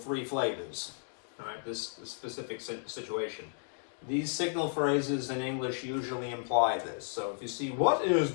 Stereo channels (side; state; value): right; silent; digital silence